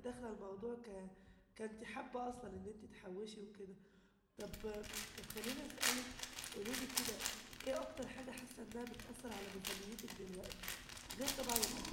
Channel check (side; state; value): both; identical; correlation 1.00